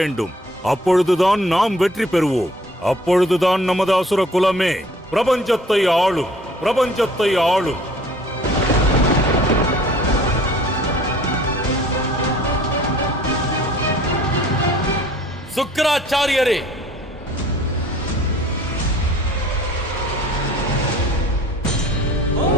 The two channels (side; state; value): both; normal; correlation 0.52